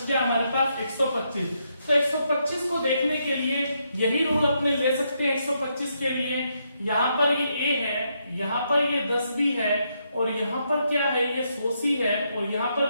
गया हमारे पास 125। तो 125 को देखने के लिए यही रूल अपने ले सकते हैं। 125 के लिए यहाँ पर ये a है, यहाँ पर ये 10 भी है, और यहाँ पर क्या है, ये 100 है, और यहाँ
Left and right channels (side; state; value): both; inverted; correlation -0.78